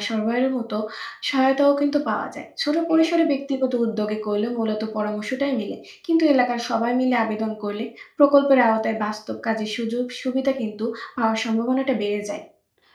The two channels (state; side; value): identical; both; correlation 1.00